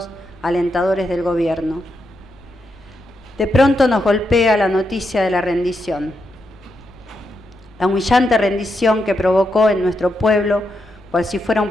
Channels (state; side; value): normal; both; correlation 0.83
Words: alentadores del gobierno. De pronto nos golpea la noticia de la rendición. La humillante rendición que provocó en nuestro pueblo, cual si fuera un